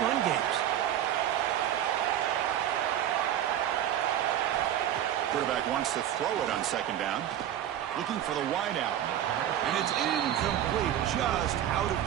run games. Quarterback wants to throw it on 2nd down. Looking for the wideout. And it's incomplete, just out of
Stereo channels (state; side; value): quieter; left; 11.1 dB